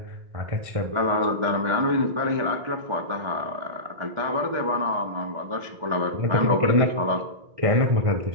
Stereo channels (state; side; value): late; left; 1.4 ms